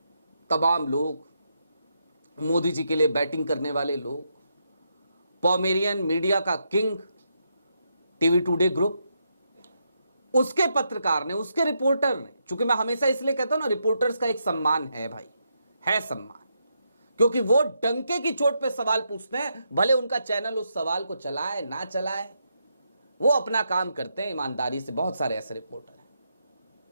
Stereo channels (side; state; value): both; inverted; correlation -0.81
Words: तमाम लोग, मोदी जी के लिए बैटिंग करने वाले लोग, पॉमेरियन मीडिया का किंग टीवी टुडे ग्रुप, उसके पत्रकार ने, उसके रिपोर्टर ने, चूंकि मैं हमेशा इसलिए कहता हूं ना, रिपोर्टर्स का एक सम्मान है भाई, है सम्मान, क्योंकि वो डंके की चोट पे सवाल पूछते हैं। भले उनका चैनल उस सवाल को चलाए ना चलाए, वो अपना काम करते हैं ईमानदारी से। बहुत सारे ऐसे रिपोर्टर हैं।